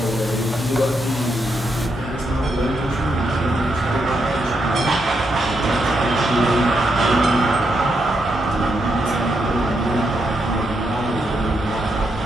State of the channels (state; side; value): normal; both; correlation 0.81